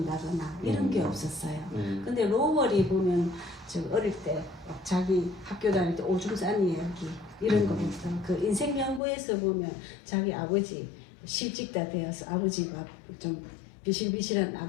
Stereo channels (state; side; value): drops out; right; at 9.0 s